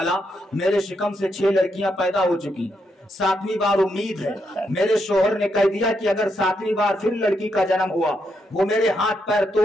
मेरे शिकम से 6 लड़कियां पैदा हो चुकी, 7वीं बार उम्मीद है। मेरे शोहर ने कह दिया कि अगर 7वीं बार फिर लड़की का जन्म हुआ, वो मेरे हाथ पैर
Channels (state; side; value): normal; both; correlation 0.80